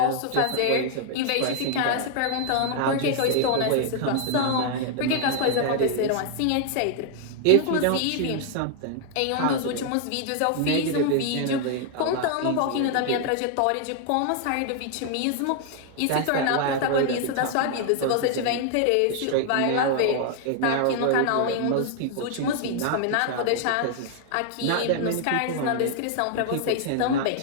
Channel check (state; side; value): different; both; correlation 0.00